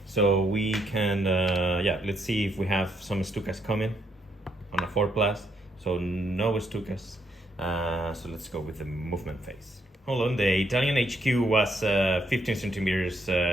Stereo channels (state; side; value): normal; both; correlation 0.75